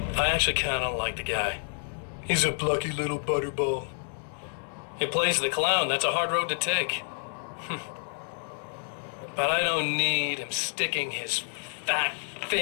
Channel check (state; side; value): silent; right; digital silence